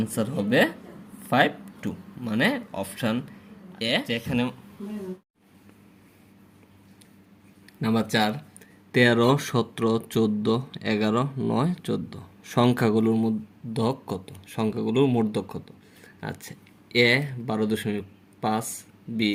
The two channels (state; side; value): identical; both; correlation 1.00